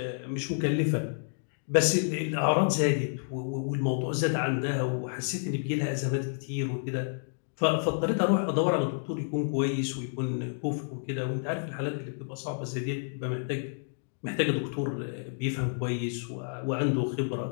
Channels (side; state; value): right; silent; digital silence